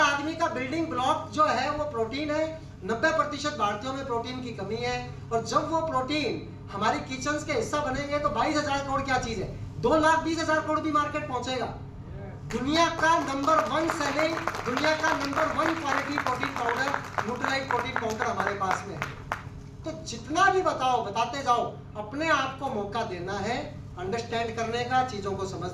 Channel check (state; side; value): identical; both; correlation 1.00